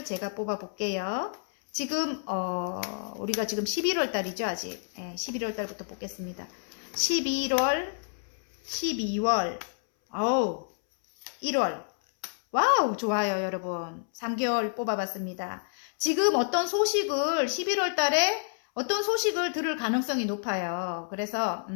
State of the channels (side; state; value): right; silent; 59 dB below the other